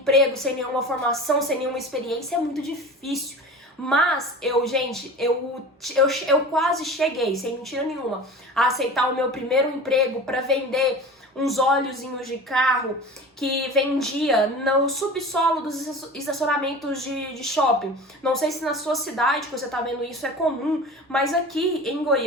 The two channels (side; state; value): both; normal; correlation 0.35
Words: sem nenhuma formação, sem nenhuma experiência. É muito difícil. Mas eu quase cheguei, sem mentira nenhuma, a aceitar o meu primeiro emprego para vender uns óleozinhos de carro que vendia no subsolo dos estacionamentos de shopping. Não sei se na sua cidade que você tá vendo isso é comum, mas aqui em